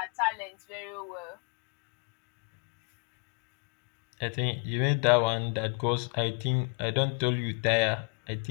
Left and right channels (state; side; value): quieter; right; 35.4 dB